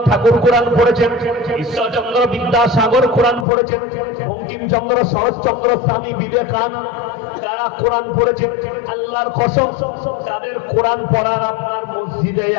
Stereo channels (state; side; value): drops out; right; at 3.5 s